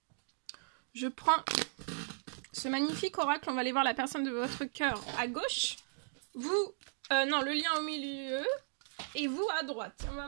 Je prends ce magnifique oracle, on va aller voir la personne de votre cœur à gauche. Vous, non, le lien au milieu. Et vous à droite. On va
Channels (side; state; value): left; silent; digital silence